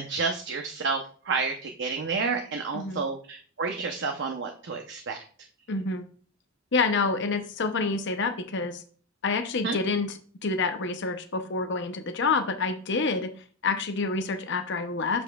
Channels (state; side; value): normal; both; correlation 0.04